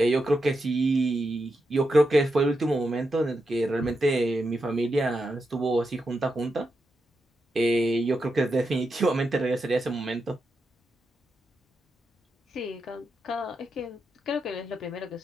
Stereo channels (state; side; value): normal; both; correlation 0.86